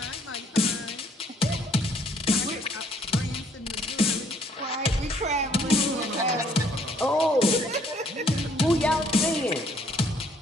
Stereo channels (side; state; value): both; normal; correlation 0.64